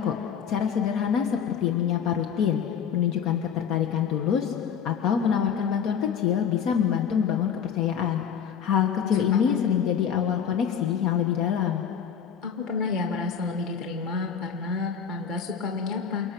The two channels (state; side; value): quieter; right; 7.6 dB